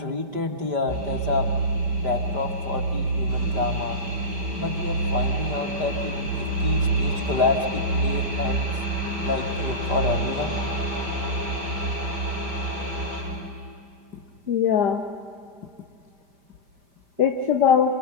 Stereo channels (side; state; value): left; late; 5.1 ms